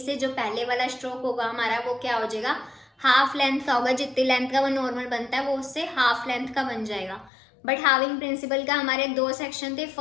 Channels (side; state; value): right; drops out; at 7.3 s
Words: जो पहले वाला स्ट्रोक होगा हमारा वो क्या हो जाएगा, हाफ लेंथ का होगा। जितनी लेंथ का वो नॉर्मल बनता है वो उससे हाफ लेंथ का बन जाएगा। बट हाविंग प्रिंसिपल का हमारे दो सेक्शन थे।